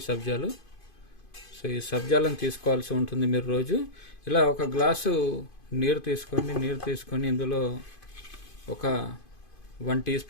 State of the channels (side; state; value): right; late; 2.5 ms